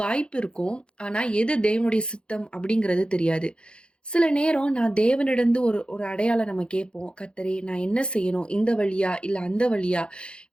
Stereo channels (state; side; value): late; right; 0.054 ms